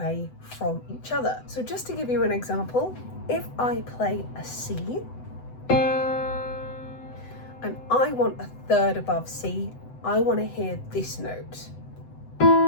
from each other. So just to give you an example, if I play a C and I want a third above C, I want to hear this note.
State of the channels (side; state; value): right; late; 7.9 ms